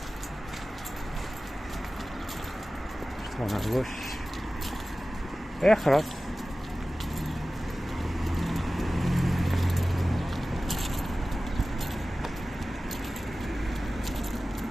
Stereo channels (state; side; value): normal; both; correlation 0.96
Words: Je tourne à gauche. Et خلاص.